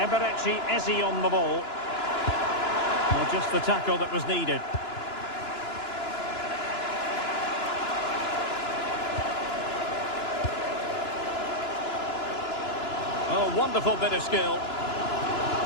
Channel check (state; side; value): late; right; 2.9 ms